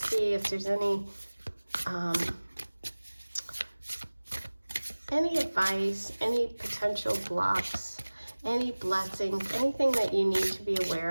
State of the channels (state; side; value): inverted; both; correlation -1.00